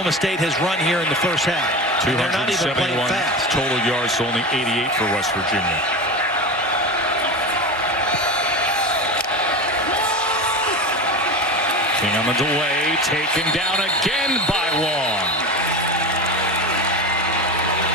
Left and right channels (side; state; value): both; normal; correlation 0.26